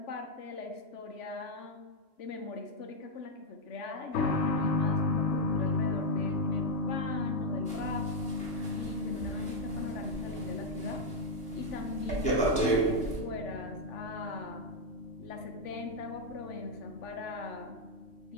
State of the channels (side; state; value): right; late; 2.8 ms